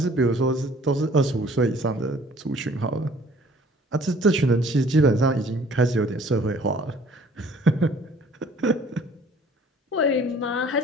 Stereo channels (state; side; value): normal; both; correlation 0.54